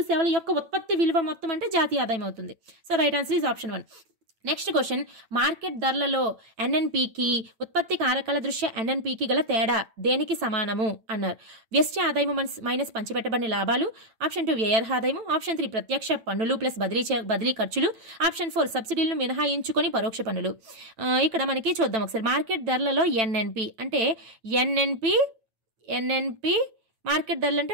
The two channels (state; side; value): late; left; 9.0 ms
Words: సేవల యొక్క ఉత్పత్తి విలువ మొత్తం అంటే జాతీయ ఆదాయం అవుతుంది. So right answer is option 1. Next question, market ధరలలో ఎన్ఎన్పికి ఉత్పత్తి కారకాల దృష్ట్యా ఎన్ఎన్పికి గల తేడా దేనికి సమానము అన్నారు. వ్యష్టి ఆదాయము మైనస్ పంచిపెట్టబడిన లాభాలు, ఆప్షన్ 2 వ్యయార్హ ఆదాయము, ఆప్షన్ 3 ప్రత్యక్ష పన్నులు ప్లస్ బదిలీ ఖర్చులు, ఆప్షన్ 4 సబ్సిడీలను మినహాయించుకొని పరోక్ష పన్నులు. ఇక్కడ మనకి చూద్దాం ఒకసారి. మార్కెట్ ధరలలో ఎన్ఎన్పి అంటే ఎన్ఎన్పి మార్కెట్ ధరలు